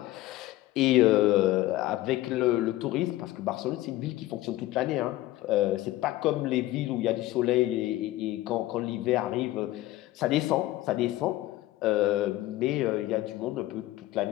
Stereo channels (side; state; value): right; quieter; 16.4 dB